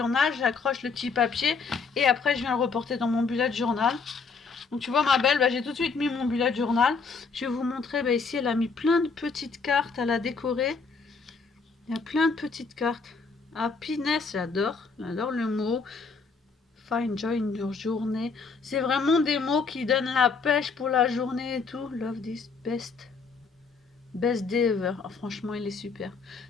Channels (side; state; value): right; quieter; 4.8 dB